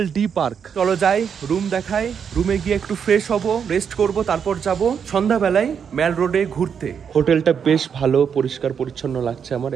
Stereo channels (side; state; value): left; quieter; 7.2 dB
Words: ডি পার্ক। চলো যাই, রুম দেখাই। রুমে গিয়ে একটু ফ্রেশ হব, রেস্ট করব, তারপর যাব সন্ধ্যাবেলায় ম্যাল রোডে ঘুরতে। হোটেলটা বেশ ভালো, পরিষ্কার পরিচ্ছন্ন লাগছে আমার।